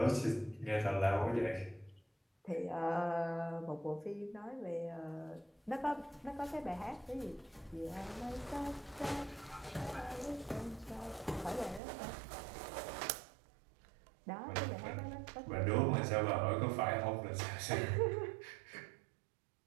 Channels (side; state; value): left; drops out; at 11.8 s